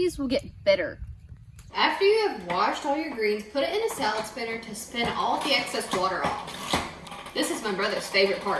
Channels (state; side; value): identical; both; correlation 1.00